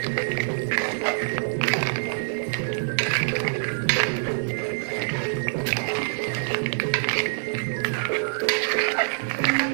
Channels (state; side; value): silent; left; 61 dB below the other